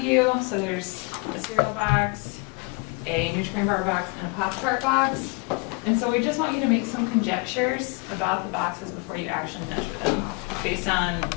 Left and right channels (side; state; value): right; quieter; 30.8 dB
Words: So there's a cereal box, a Nutri-Grain bar box, and a Pop-Tart box. And so we just want you to make some conjectures about the boxes before you actually measure them, based on